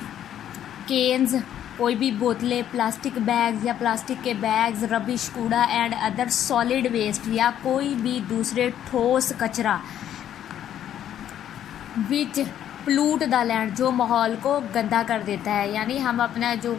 केन्स, कोई भी बोतलें, प्लास्टिक बैग्स या प्लास्टिक के बैग्स, रबिश, कूड़ा एंड अदर सॉलिड वेस्ट, या कोई भी दूसरे ठोस कचरा, विच प्लूट द लैंड, जो माहौल को गंदा कर देता है। यानी हम अपना जो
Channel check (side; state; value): right; quieter; 10.6 dB